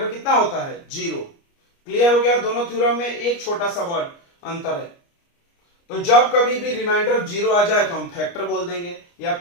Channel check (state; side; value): late; right; 29 ms